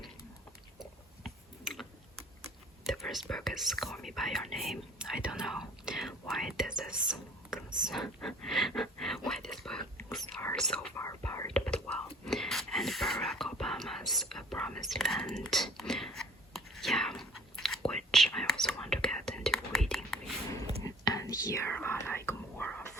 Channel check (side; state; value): both; normal; correlation 0.50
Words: the first book is Call Me By Your Name. I don't know why this is why these books are so far apart, but well. And Barack Obama's A Promised Land, yeah, which I also want to get into reading. And here are like more